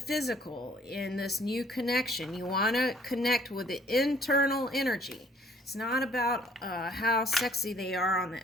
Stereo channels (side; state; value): both; normal; correlation 0.60